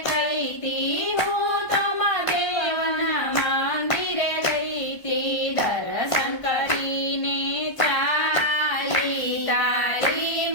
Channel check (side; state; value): right; late; 1.0 ms